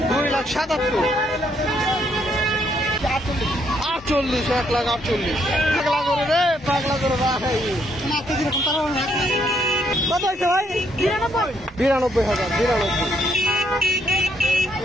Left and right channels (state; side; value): normal; both; correlation 0.73